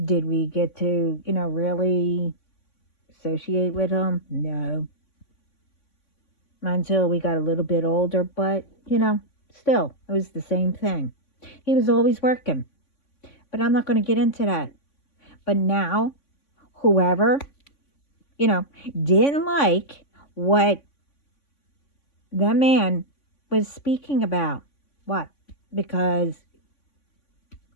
Did we get to, really associate with him? No. Not until we got a little bit older, but, still, it was the same thing. He was always working, but I'm not going to get into that. But now, whoever, you know, didn't like what that man was speaking about, what? Because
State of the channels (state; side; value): late; right; 3.5 ms